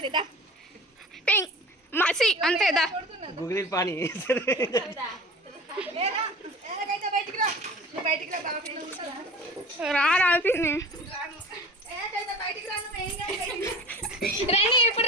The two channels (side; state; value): both; normal; correlation 0.40